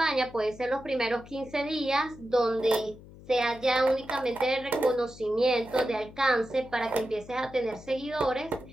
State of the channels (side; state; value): left; noise; hum, 19 dB below the sound